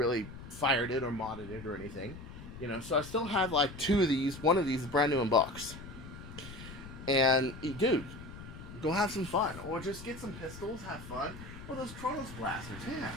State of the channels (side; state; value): left; noise; rumble, 13 dB below the sound